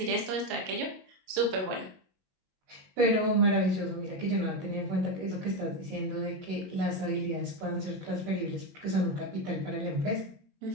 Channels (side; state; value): left; late; 22 ms